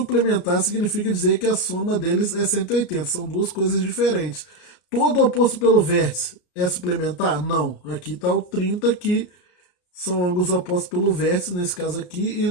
significa dizer que a soma deles é 180. São duas coisas diferentes. Todo oposto pelo vértice é suplementar? Não. Aqui está o 30 que são ângulos opostos pelo vértice, nesse caso aqui, e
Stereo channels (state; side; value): late; right; 34 ms